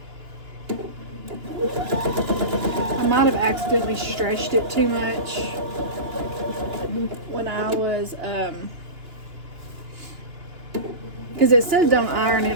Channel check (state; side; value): late; left; 2.9 ms